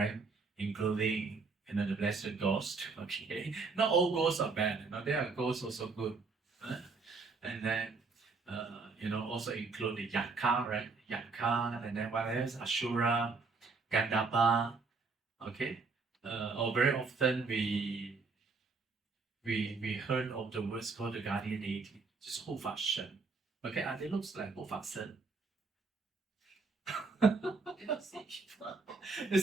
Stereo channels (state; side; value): quieter; left; 4.3 dB